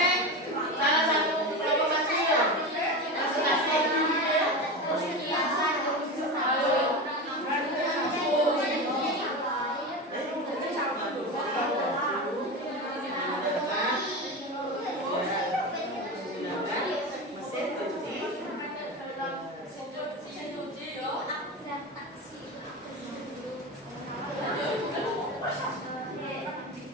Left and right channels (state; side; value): normal; both; correlation 0.23